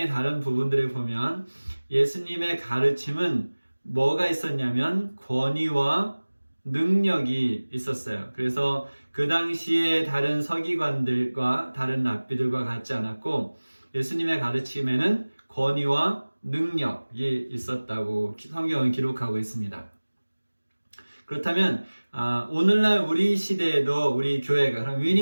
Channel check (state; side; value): inverted; both; correlation -1.00